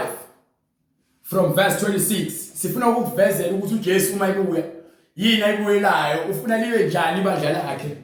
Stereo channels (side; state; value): both; identical; correlation 1.00